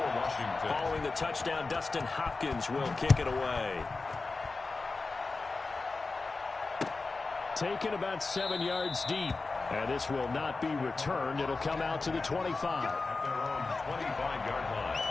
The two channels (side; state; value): right; quieter; 3.8 dB